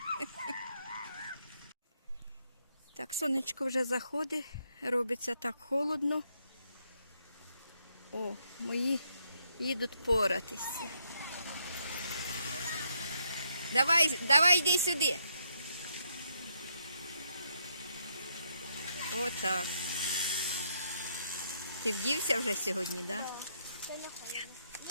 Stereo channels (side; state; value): both; inverted; correlation -0.76